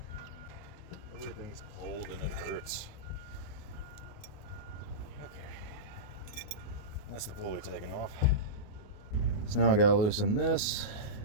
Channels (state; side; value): late; right; 28 ms